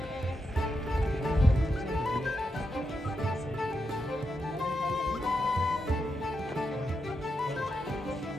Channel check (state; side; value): normal; both; correlation 0.85